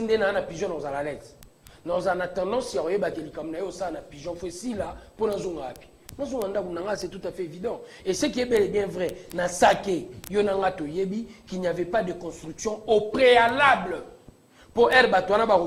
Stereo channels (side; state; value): both; identical; correlation 1.00